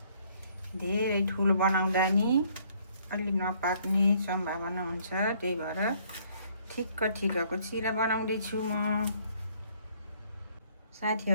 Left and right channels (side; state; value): both; inverted; correlation -0.63